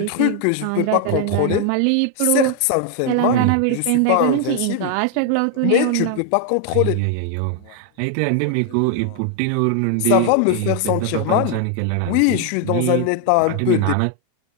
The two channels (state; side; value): different; both; correlation 0.00